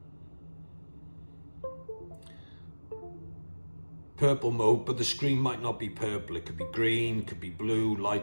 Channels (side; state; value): both; inverted; correlation -1.00